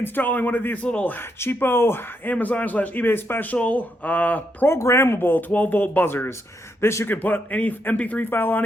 one of these little cheapo Amazon slash eBay special programmable 12 volt buzzers. This you can put any MP3 file on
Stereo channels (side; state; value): both; normal; correlation 0.79